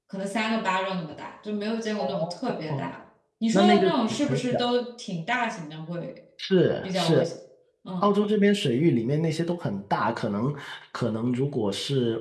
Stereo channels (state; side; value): identical; both; correlation 1.00